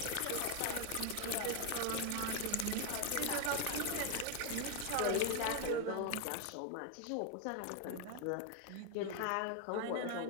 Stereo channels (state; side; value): different; both; correlation 0.01